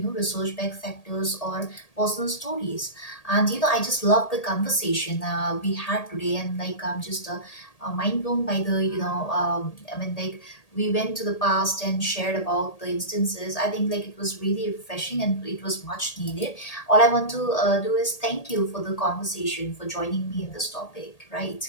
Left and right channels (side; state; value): right; late; 1.8 ms